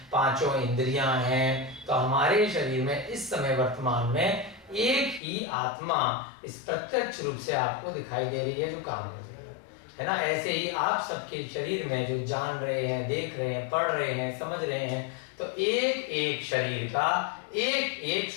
पांचों इंद्रियां हैं, तो हमारे शरीर में इस समय वर्तमान में एक ही आत्मा इस प्रत्यक्ष रूप से आपको दिखाई दे रही है जो काम कर रही है ना। ऐसे ही आप सबके शरीर में जो जान रहे हैं, देख रहे हैं, पढ़ रहे हैं, समझ रहे हैं, तो एक एक शरीर का एक एक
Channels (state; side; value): drops out; right; at 5.2 s